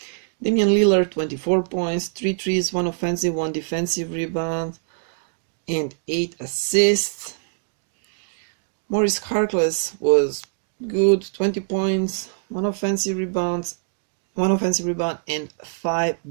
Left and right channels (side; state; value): left; silent; digital silence